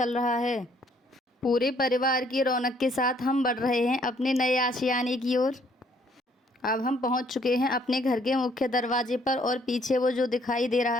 रहा है। पूरे परिवार की रौनक के साथ हम बढ़ रहे हैं अपने नए आशियाने की ओर। अब हम पहुंच चुके हैं अपने घर के मुख्य दरवाजे पर और पीछे वो जो दिखाई दे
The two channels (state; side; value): normal; both; correlation 0.65